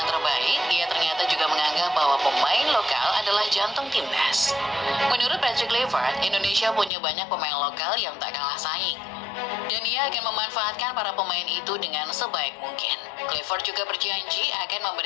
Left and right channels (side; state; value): right; drops out; at 6.9 s